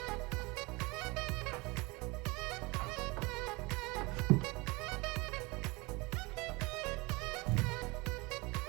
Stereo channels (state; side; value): quieter; left; 25.0 dB